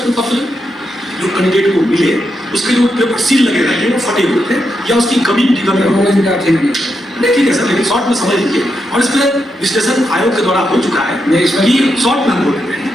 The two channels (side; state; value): both; normal; correlation 0.84